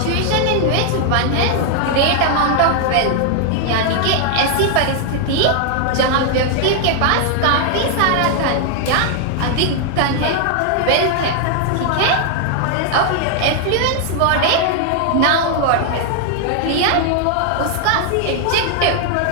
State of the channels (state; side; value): different; both; correlation 0.00